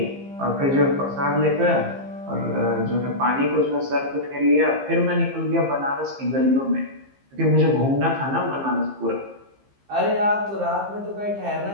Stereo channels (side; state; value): left; late; 15 ms